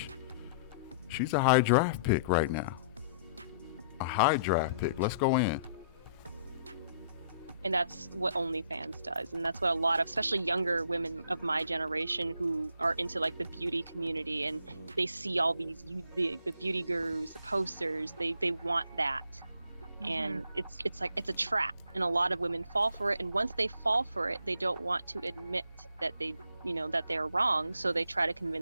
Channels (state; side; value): inverted; both; correlation -0.63